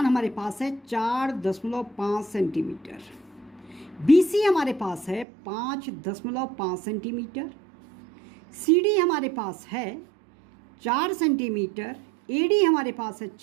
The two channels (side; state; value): left; drops out; at 5.2 s